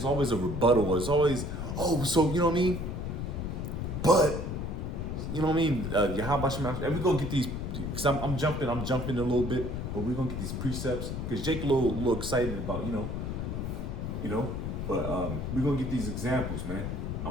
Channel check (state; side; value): noise; left; rumble, 4 dB below the sound